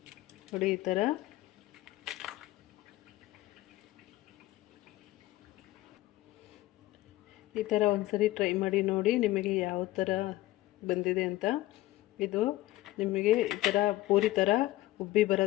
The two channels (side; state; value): right; quieter; 16.7 dB